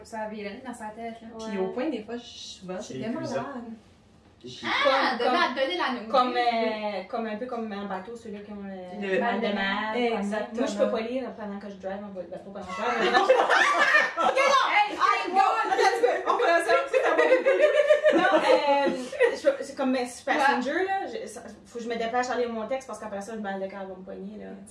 ça virait dans sa tête, là. Puis au point, des fois, souvent, j'étais malade. Donner la nouvelle. Comme un peu comme un bateau, ceux-là qui ont le mal de mer. Exactement. Moi, je peux pas lire pendant que je drive un bateau pendant que je drive. Ok, non! Hey, On peut ça, non, c'est comme passenger, là. Faut que je me dépêche à lire mon texte parce qu'après ça, le mal de cœur va me poigner, là.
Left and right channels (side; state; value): both; identical; correlation 1.00